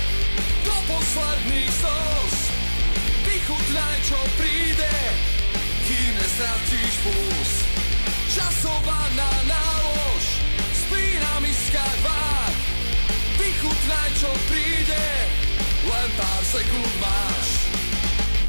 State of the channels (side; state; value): both; inverted; correlation -1.00